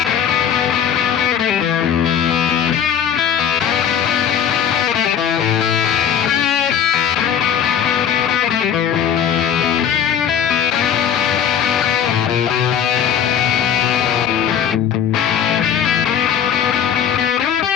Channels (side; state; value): right; quieter; 8.7 dB